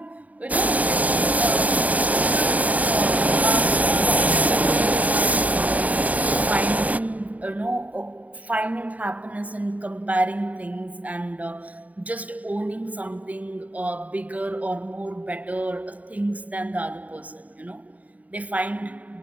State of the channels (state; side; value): late; left; 0.072 ms